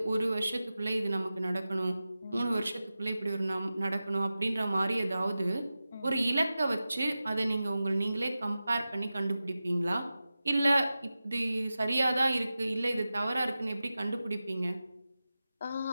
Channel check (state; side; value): inverted; both; correlation -0.94